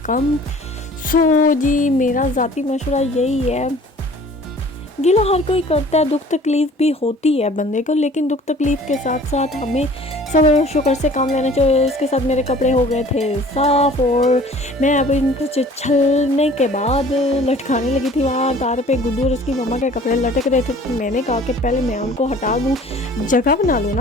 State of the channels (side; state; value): both; normal; correlation 0.49